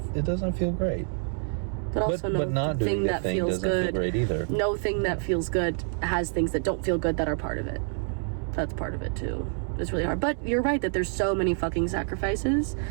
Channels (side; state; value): left; silent; 60 dB below the other